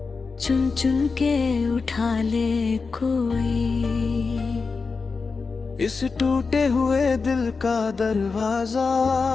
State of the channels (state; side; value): quieter; right; 4.6 dB